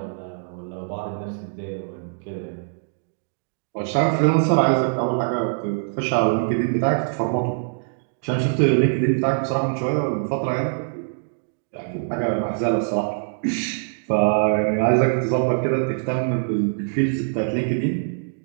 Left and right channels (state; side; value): silent; left; digital silence